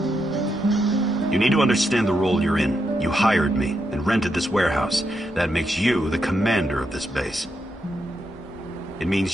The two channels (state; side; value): normal; both; correlation 0.83